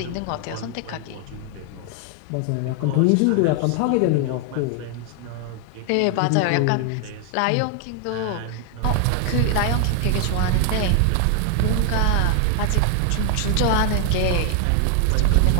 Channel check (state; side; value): different; both; correlation 0.00